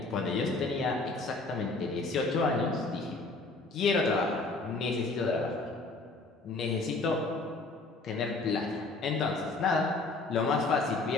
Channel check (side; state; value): right; quieter; 3.4 dB